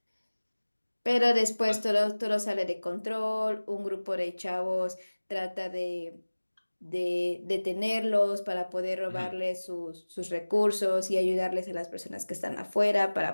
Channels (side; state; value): both; inverted; correlation -1.00